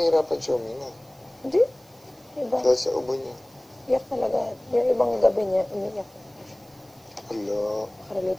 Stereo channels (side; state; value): right; noise; hiss, 30 dB below the sound